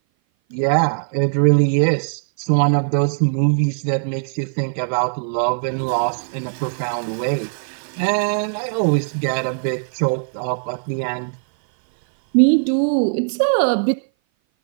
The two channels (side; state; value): left; silent; 58 dB below the other